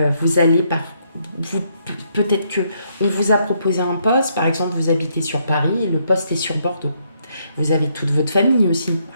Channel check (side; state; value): both; inverted; correlation -0.74